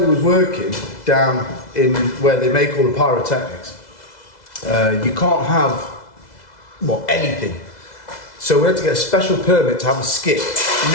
was working, down in where they make all the pyrotechnics, you can't have, well, anything. So we had to get a special permit to have a skip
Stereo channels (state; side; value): late; right; 2.0 ms